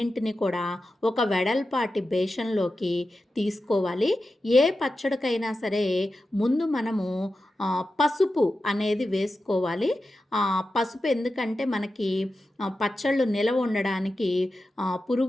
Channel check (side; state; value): both; normal; correlation 0.91